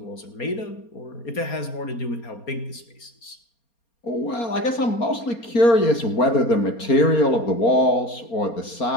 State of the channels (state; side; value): late; right; 4.3 ms